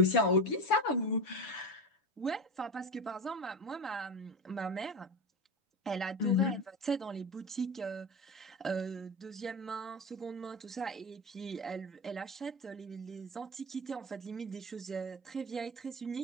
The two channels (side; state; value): both; normal; correlation 0.22